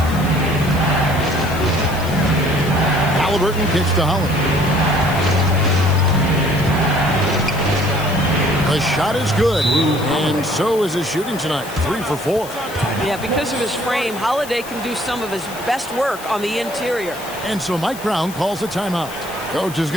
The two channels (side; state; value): left; noise; hiss, 15 dB below the sound